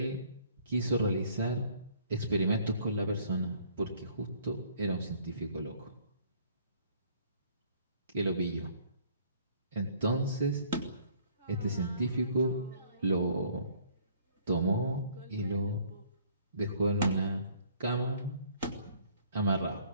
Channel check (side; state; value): both; inverted; correlation -0.59